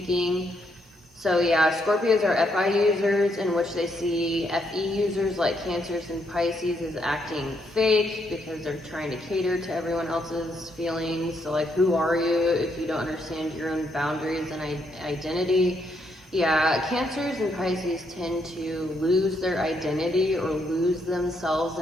So yeah, Scorpios are FI users, in which they see FE users like Cancers and Pisces as acting fake because they're trying to cater to everyone else's feelings. So like, who are you if you don't understand your own boundaries and identity? Yeah, Cancers and Pisces tend to lose their identity or lose themselves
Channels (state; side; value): normal; both; correlation 0.76